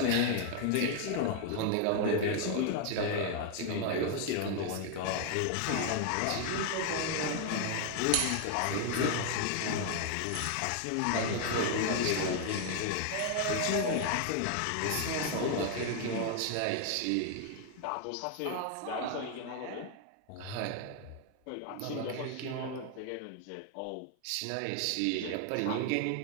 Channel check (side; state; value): both; different; correlation 0.00